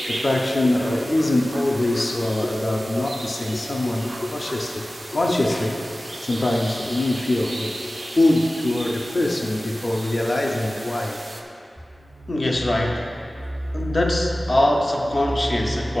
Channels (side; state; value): both; normal; correlation 0.96